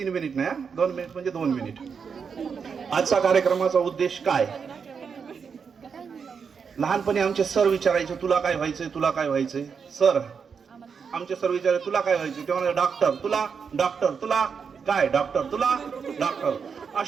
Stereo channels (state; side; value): quieter; left; 6.1 dB